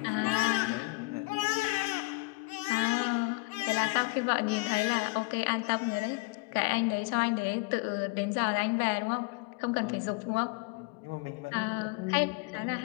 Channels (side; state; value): right; quieter; 24.9 dB